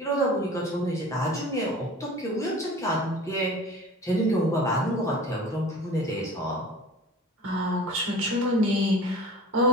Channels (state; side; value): normal; both; correlation 0.41